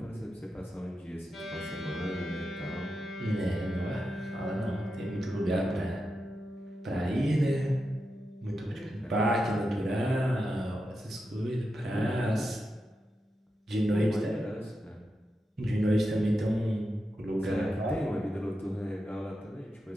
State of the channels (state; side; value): normal; both; correlation 0.88